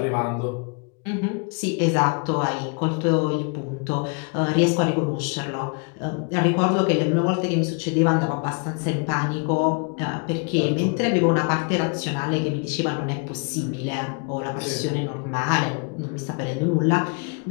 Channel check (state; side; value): quieter; right; 35.6 dB